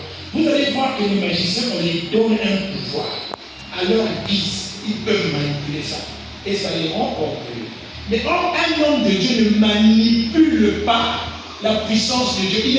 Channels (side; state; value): both; identical; correlation 1.00